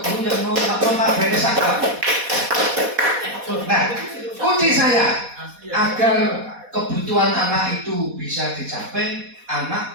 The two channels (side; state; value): left; late; 4.1 ms